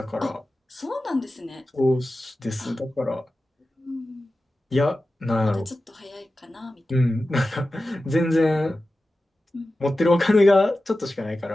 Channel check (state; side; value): normal; both; correlation 0.94